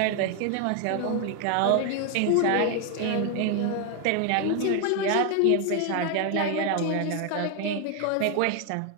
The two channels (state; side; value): different; both; correlation 0.01